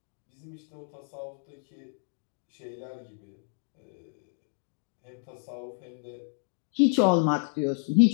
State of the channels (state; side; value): silent; right; digital silence